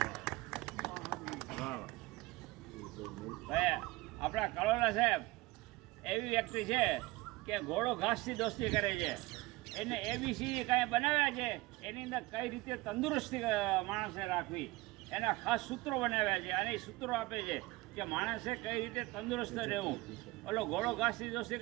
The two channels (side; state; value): left; quieter; 21.2 dB